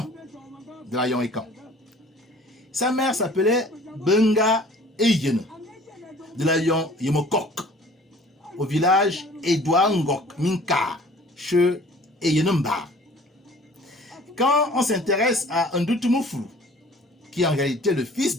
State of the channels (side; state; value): both; normal; correlation 0.51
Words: de Layon Ekan. Sa mère s'appelait Benga Eyene, de Layon Yemokok, au village Edouard Ngok Minka, chez Eyenemba. Quand on s'intéresse à Ndutumufulu, qui est en réalité le fils